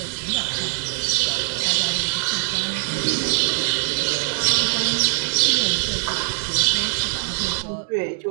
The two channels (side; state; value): left; silent; digital silence